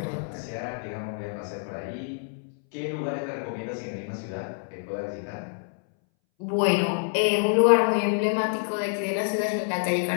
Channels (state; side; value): silent; right; 60 dB below the other